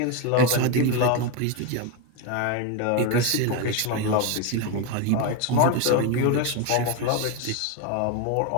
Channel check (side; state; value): both; different; correlation 0.02